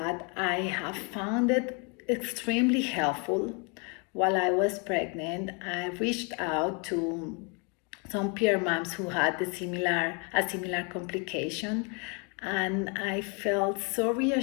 I have found it extremely helpful. While I was pregnant, I reached out to some peer moms who had a similar complication, and I felt so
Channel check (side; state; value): right; quieter; 34.4 dB